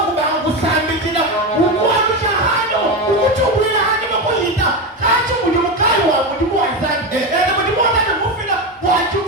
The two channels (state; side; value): normal; both; correlation 0.16